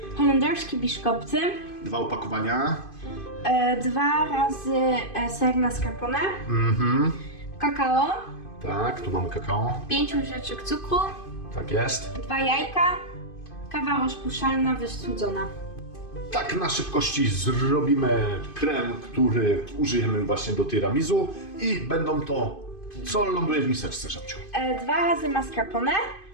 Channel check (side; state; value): right; late; 2.5 ms